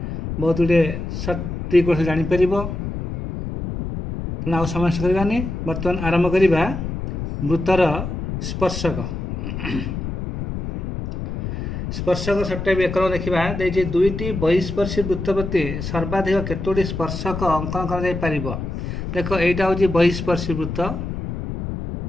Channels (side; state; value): left; noise; rumble, 5 dB below the sound